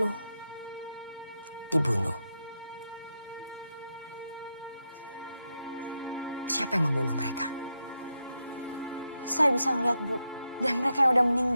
Dibunuh. Siapa yang membunuh mereka? Saya bisa ngeliat, Bu. Dan mereka yang udah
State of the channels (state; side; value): inverted; both; correlation -0.85